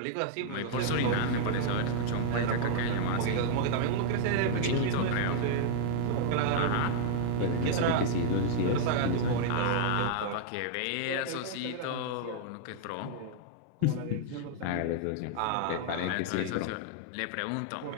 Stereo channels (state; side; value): different; both; correlation -0.01